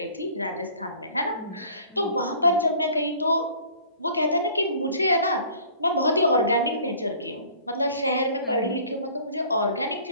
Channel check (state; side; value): inverted; both; correlation -0.50